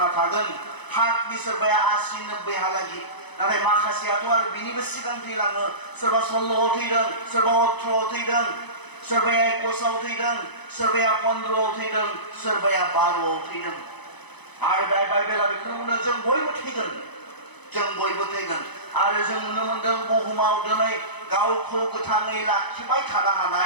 थागोन हार्टनि सोरबाया 80-90 हालागि नाथाय माखासेयाथ' आरो बिनिबो सिगां थैलाङो सोरबा 16 थैदों सोरबा 18 थैदों सोरबाया 21 थैदों सोरबाया 15 थैदों सोरबाया 12 थैदों आरो बाइबेला बेखौनो बुङो जों बयबो थैगोन आरो जों नुनो मोनदों बुहुमाव दिनै गावखौ गोथाङै लाखिबाय थानो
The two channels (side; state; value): right; late; 0.99 ms